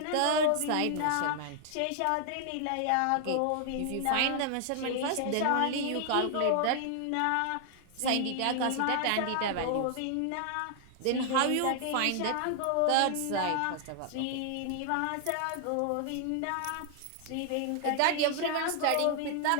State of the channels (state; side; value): different; both; correlation 0.00